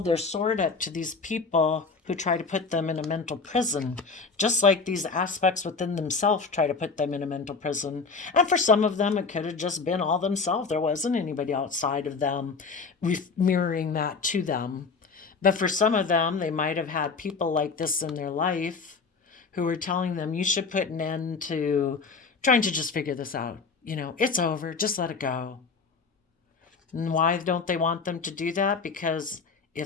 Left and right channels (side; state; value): right; quieter; 4.7 dB